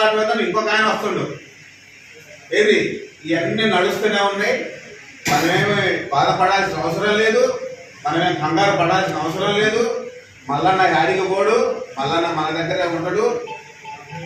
ఇంకొక ఆయన వస్తుండు. ఏది ఇవన్నీ నడుస్తూనే ఉన్నాయి. మనమేమి బాధపడాల్సిన అవసరం లేదు, మనమేం కంగారు పడాల్సిన అవసరం లేదు. మల్లన్న యాడికి పోడు, మల్లన్న మన దగ్గరే ఉంటాడు.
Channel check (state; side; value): identical; both; correlation 1.00